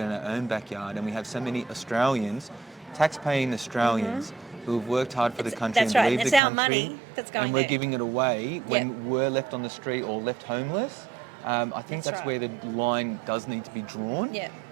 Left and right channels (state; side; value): drops out; left; at 6.4 s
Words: our own backyard and we have so many Australians, tax-paying Australians, who have worked hard for the country that's and right. believe the It's our country, money that's going and we're there. giving it away when we're left on the street or left homeless. I think that's right. where the line does need to be drawn. Yeah.